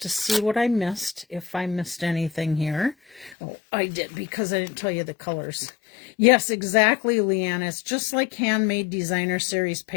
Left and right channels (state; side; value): drops out; right; at 3.4 s